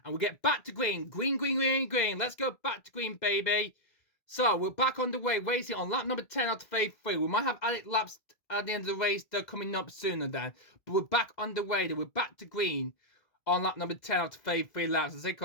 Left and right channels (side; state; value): right; late; 2.0 ms